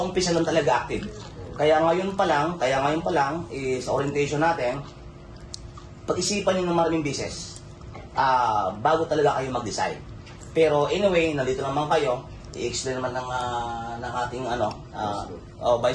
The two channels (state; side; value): identical; both; correlation 1.00